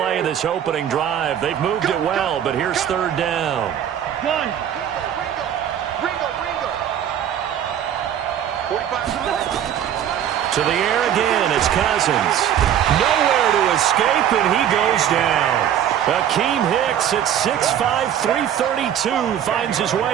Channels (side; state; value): left; quieter; 10.0 dB